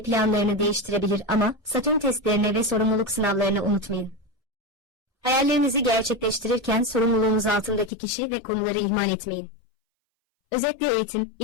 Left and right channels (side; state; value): right; drops out; at 7.9 s